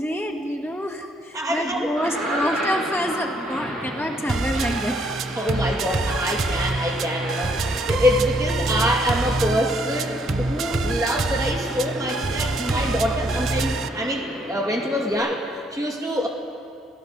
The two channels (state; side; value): normal; both; correlation 0.69